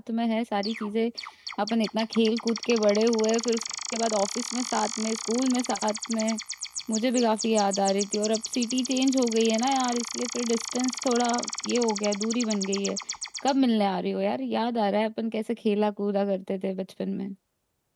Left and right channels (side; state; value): both; identical; correlation 1.00